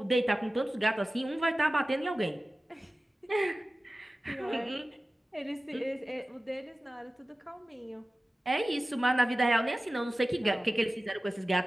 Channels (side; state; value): both; normal; correlation 0.96